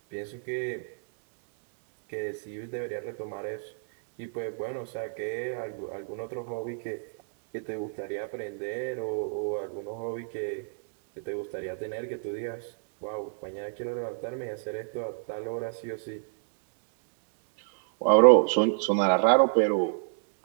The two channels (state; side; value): silent; left; digital silence